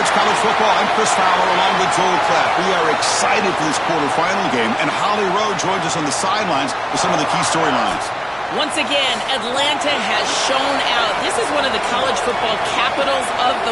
College Football, I'm Chris Fowler along with Joel Klatt. We are excited for this quarterfinal game, and Holly Rowe joins us on the sidelines with some of the key storylines. Once again, Atlanta has shown out. This is one of the college football capitals of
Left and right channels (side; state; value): both; identical; correlation 1.00